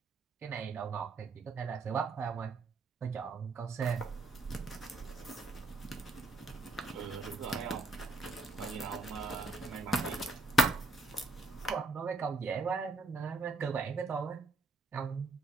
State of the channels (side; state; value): left; quieter; 3.1 dB